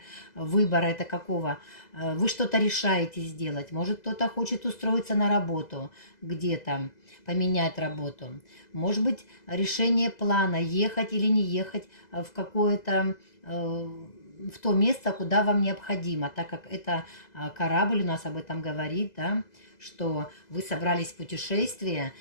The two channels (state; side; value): late; right; 2.0 ms